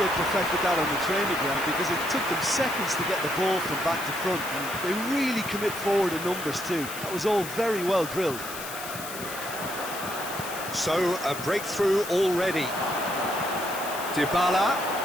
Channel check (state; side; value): noise; left; hiss, 10 dB below the sound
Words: perfected that on the training ground because it took them seconds to get the ball from back to front, and they really commit forward in numbers too. That was all very well drilled. So, a breakthrough already. Dybala.